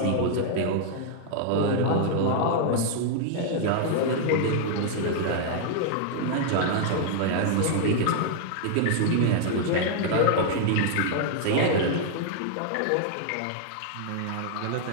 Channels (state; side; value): different; both; correlation -0.01